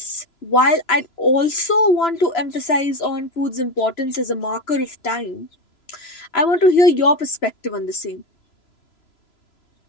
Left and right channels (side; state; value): right; late; 3.0 ms